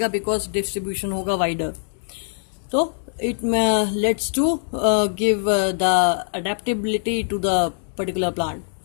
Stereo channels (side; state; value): right; silent; digital silence